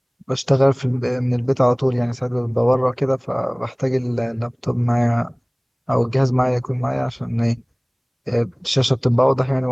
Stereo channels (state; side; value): identical; both; correlation 1.00